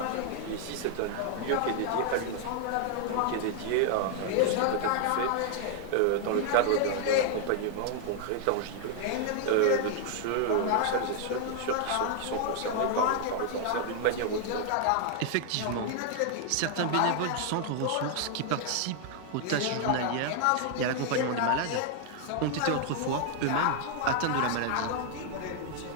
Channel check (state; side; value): different; both; correlation 0.00